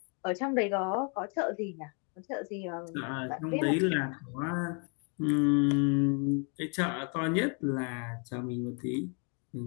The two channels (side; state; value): right; quieter; 38.2 dB